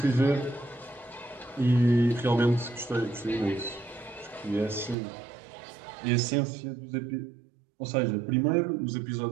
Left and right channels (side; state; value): left; drops out; at 5.0 s